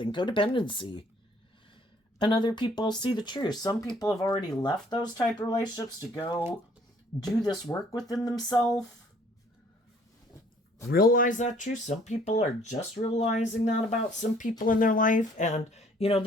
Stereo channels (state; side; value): normal; both; correlation 0.59